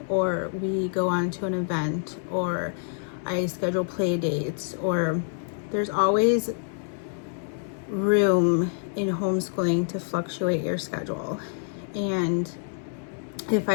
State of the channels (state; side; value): silent; right; digital silence